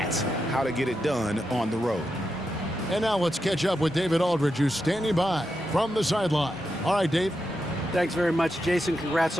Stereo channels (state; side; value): normal; both; correlation 0.86